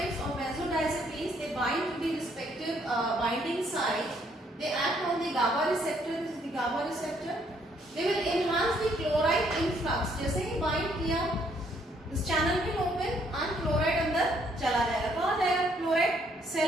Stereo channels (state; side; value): normal; both; correlation 0.68